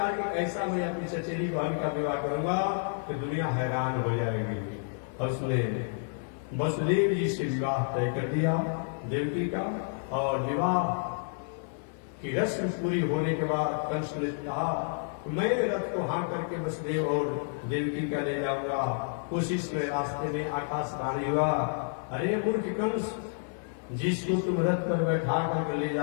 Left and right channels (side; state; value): right; silent; 58 dB below the other